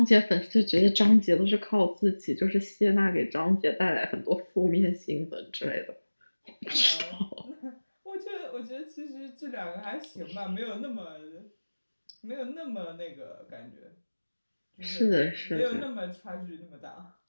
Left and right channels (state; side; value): inverted; both; correlation -1.00